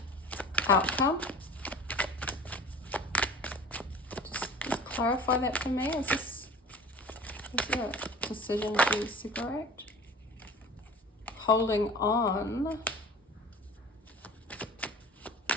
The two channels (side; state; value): both; normal; correlation 0.41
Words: outcome. Just clarify that for me. Is there a decision to separate? Holding on